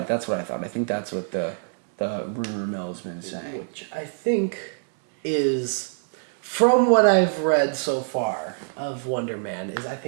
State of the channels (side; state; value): left; silent; 60 dB below the other